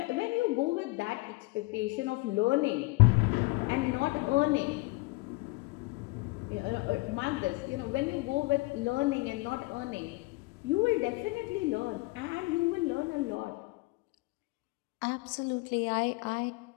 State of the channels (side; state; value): right; quieter; 23.8 dB